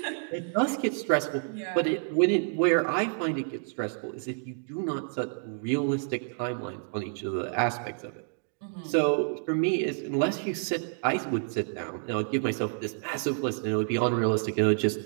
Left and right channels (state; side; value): silent; left; 59 dB below the other